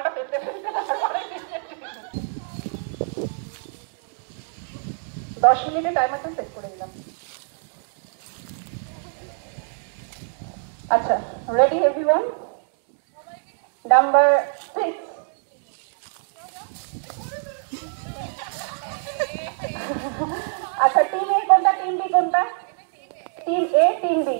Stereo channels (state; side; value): silent; left; digital silence